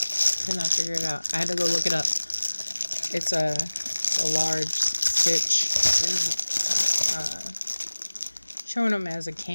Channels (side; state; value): both; inverted; correlation -1.00